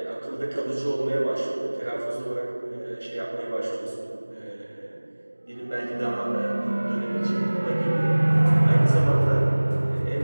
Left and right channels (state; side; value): inverted; both; correlation -1.00